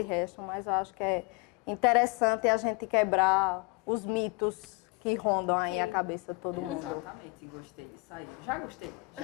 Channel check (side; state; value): right; quieter; 27.8 dB